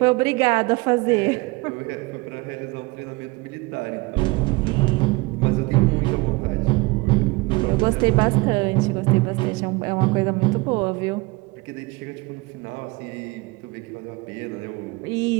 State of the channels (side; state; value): left; quieter; 24.2 dB